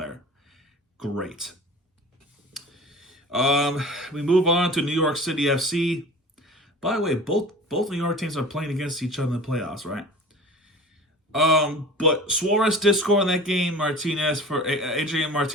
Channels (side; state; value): both; normal; correlation 0.40